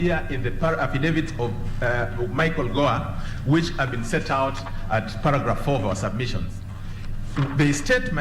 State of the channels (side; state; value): both; identical; correlation 1.00